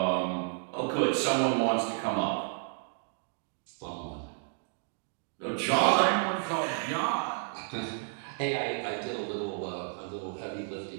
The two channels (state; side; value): silent; left; 57 dB below the other